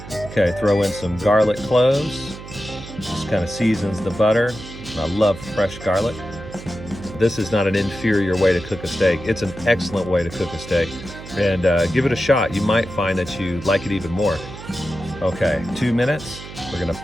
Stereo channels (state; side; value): noise; right; hum, 14 dB below the sound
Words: Okay, throw in some garlic cloves. Just kind of seasons the butter. I love fresh garlic. This is not an inferior way to cook a steak. It's an excellent way to cook a steak. And give it a shot. You might find that you like it even more. Okay, 2 minutes. We're gonna